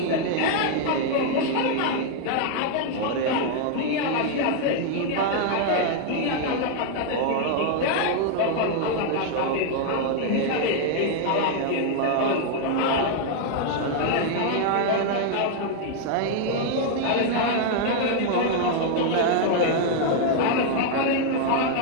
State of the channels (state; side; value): different; both; correlation 0.00